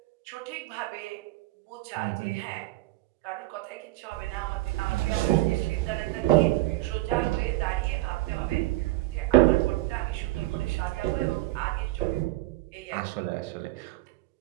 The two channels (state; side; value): quieter; left; 18.5 dB